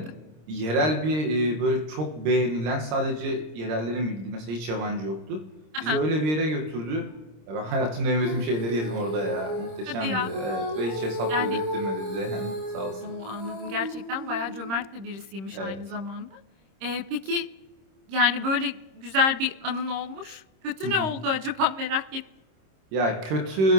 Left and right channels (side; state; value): left; late; 26 ms